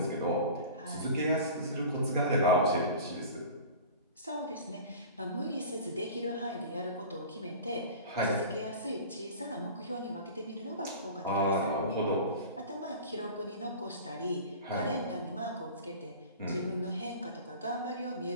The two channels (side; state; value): both; inverted; correlation -0.38